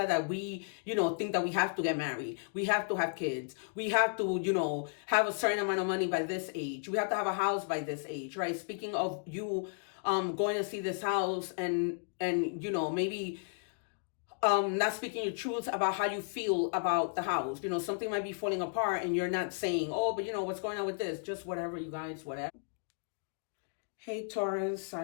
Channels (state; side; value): silent; right; digital silence